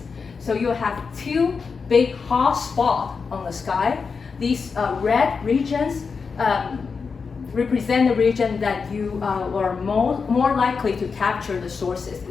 So you have 2 big hot spots on the sky. These red regions represent the region that you are more likely to capture the sources.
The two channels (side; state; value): right; quieter; 5.2 dB